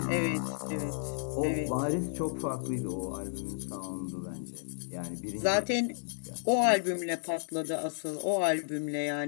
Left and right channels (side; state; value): right; silent; digital silence